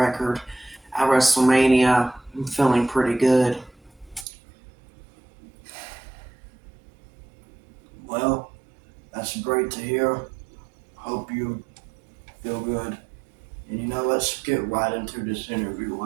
at WrestleMania, I'm feeling pretty good. Well, that's great to hear. Hope you feel good. And, let's get right into this interview,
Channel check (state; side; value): drops out; left; at 4.2 s